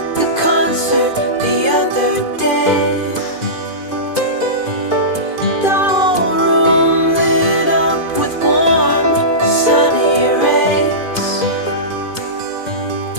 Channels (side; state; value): right; late; 2.5 ms